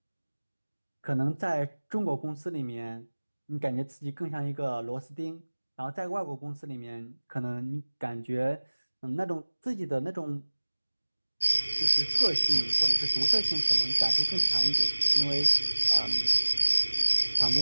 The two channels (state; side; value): inverted; both; correlation -1.00